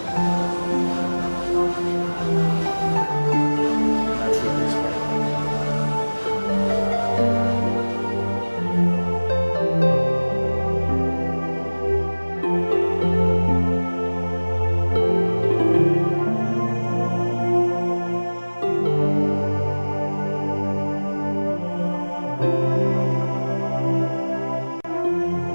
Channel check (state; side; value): inverted; both; correlation -1.00